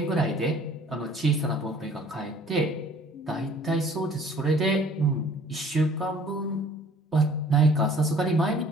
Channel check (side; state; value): both; normal; correlation 0.53